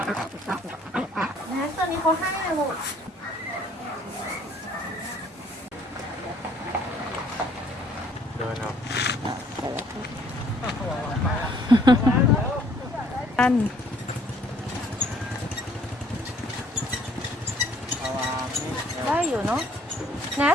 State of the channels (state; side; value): normal; both; correlation 0.61